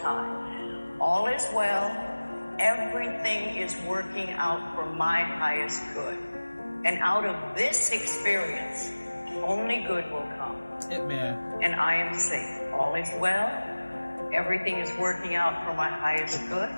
time. All is well. Everything is working out for my highest good. And out of this experience, only good will come. Hitman. And I am safe. All is well. Everything is working out for my highest good.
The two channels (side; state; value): both; inverted; correlation -1.00